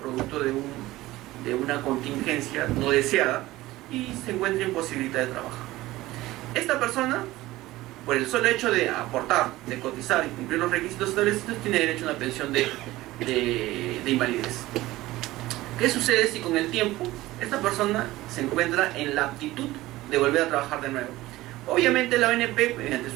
producto de una contingencia no deseada y se encuentra imposibilitada de trabajar. Esta persona, por el solo hecho de aportar, de cotizar y cumplir los requisitos establecidos, tiene derecho a una pensión de invalidez. ¿Qué sucede si con el tiempo esta persona se encuentra en la aptitud de volver a trabajar de nuevo? Obviamente la ONP, mediante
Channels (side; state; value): left; quieter; 17.6 dB